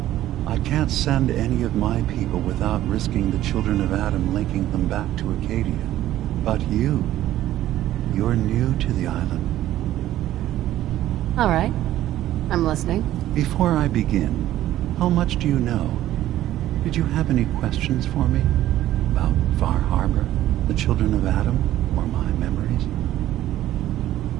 I can't send any of my people without risking the children of Adam linking them back to Acadia. But you're new to the island. All right. I'm listening. Before I begin, how much do you know? Did you have any questions for me? About Far Harbor, the children of Adam, or my memories?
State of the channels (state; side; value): quieter; left; 13.6 dB